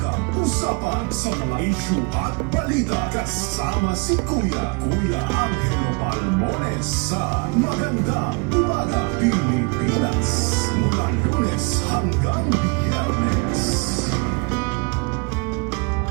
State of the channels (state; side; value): quieter; left; 30.8 dB